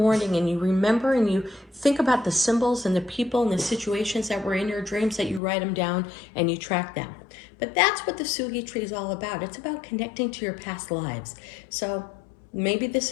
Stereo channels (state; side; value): drops out; right; at 5.4 s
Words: and you remember and you think about the symbols and the people and the situations that were in your dreams, that you write them down and you track them. But that's what the Sugi tree is all about. It's about connecting to your past lives. So maybe this